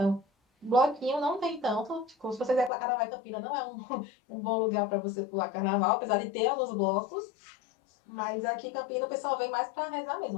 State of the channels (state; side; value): drops out; right; at 2.7 s